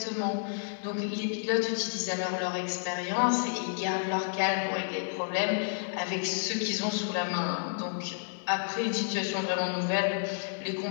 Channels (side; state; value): right; silent; 57 dB below the other